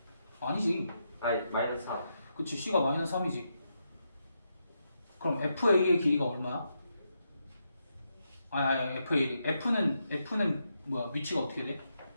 아니지. 아니 마이너스 3. 그치, C가 마이너스 3이지. 그럼 FA의 길이가 얼마야? 아니 FA. F는 뭐야? 위치가 어떻게 돼?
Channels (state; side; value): inverted; both; correlation -0.83